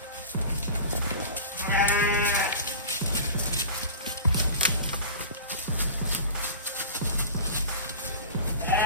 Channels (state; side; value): inverted; both; correlation -0.36